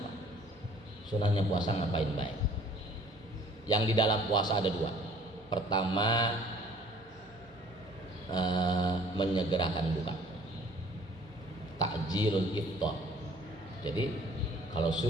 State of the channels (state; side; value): normal; both; correlation 0.54